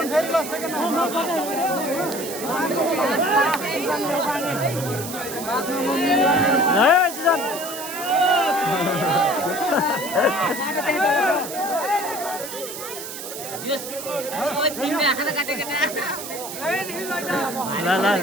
सिजन ल ल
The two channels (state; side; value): noise; right; hiss, 9 dB below the sound